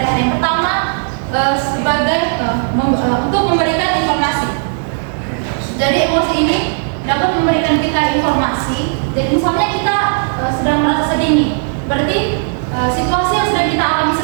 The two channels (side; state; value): left; silent; 70 dB below the other